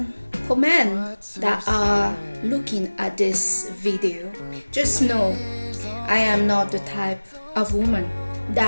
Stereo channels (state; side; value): inverted; both; correlation -1.00